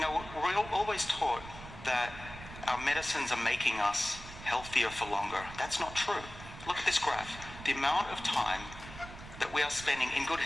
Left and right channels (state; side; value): noise; right; rumble, 14 dB below the sound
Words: we're always taught that our medicines are making us healthier for longer. That's not true. Look at this graph. The amount of time that we are spending in good